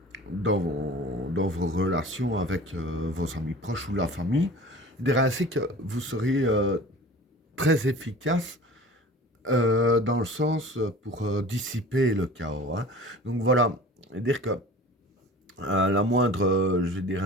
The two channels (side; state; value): both; normal; correlation 0.40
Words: dans vos relations avec vos amis proches ou la famille, je dirais ainsi que vous serez très efficace dans le sens pour dissiper le chaos, hein. Donc voilà, dire que la moindre, je dirais